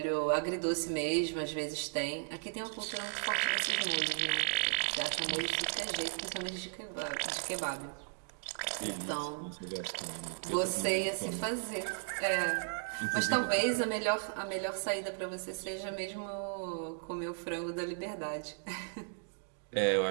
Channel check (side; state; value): left; silent; digital silence